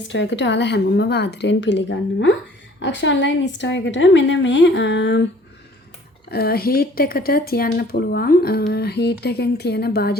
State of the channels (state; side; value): normal; both; correlation 0.54